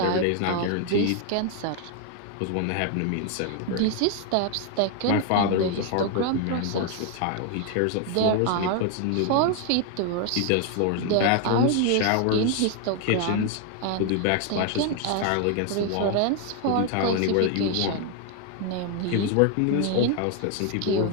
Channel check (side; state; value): both; different; correlation 0.01